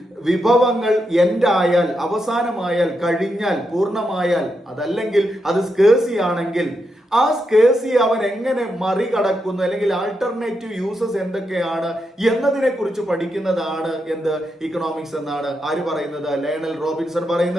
വിഭവങ്ങൾ എൻഡായാൽ, അവസാനമായാൽ, കഴിഞ്ഞാൽ, പൂർണ്ണമായാൽ, അതല്ലെങ്കിൽ അത് സ്കേഴ്സി ആണെങ്കിൽ ആ സ്കേഴ്സി അവൻ എങ്ങനെ മറികടക്കുന്നു, അല്ലെങ്കിൽ ആൾട്ടർനേറ്റീവ് യൂസസ് എന്തൊക്കെയാണ് എന്നതിനെ കുറിച്ച് പഠിക്കുന്നതാണ് എന്ത്? ഇക്കണോമിക്സ് എന്നാണ് ആര് പറയുന്നത്? ലയണൽ റോബിൻസൺ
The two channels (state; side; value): normal; both; correlation 0.84